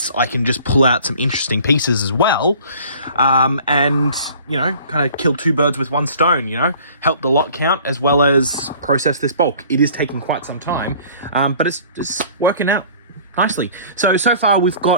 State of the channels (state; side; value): inverted; both; correlation -0.49